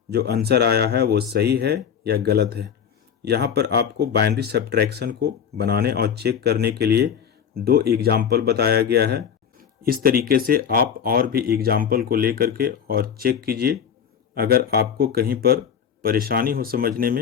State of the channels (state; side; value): quieter; right; 7.9 dB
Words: जो आंसर आया है वो सही है या गलत है। यहाँ पर आपको बाइनरी सब्ट्रैक्शन को बनाने और चेक करने के लिए 2 एग्जाम्पल बताया गया है। इस तरीके से आप और भी एग्जाम्पल को लेकर के और चेक कीजिए। अगर आपको कहीं पर परेशानी हो समझने